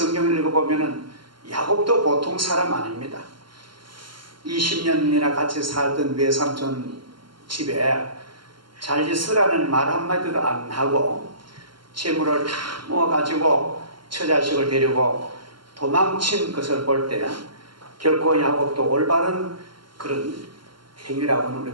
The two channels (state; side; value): late; left; 0.72 ms